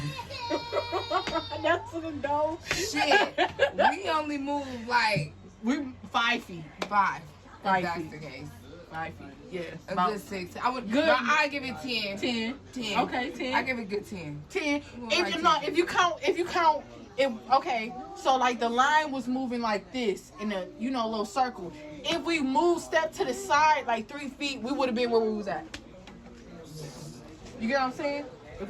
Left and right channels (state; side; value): identical; both; correlation 1.00